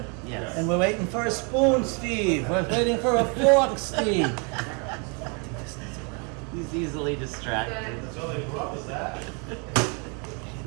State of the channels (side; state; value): left; quieter; 34.5 dB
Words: Yes. And we're waiting for a spoon, Steve. We're waiting for a fork, Steve. He's easily distracted. That's all they brought was that.